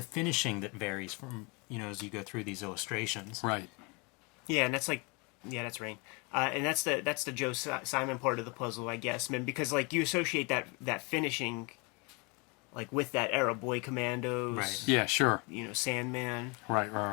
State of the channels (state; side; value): quieter; right; 30.2 dB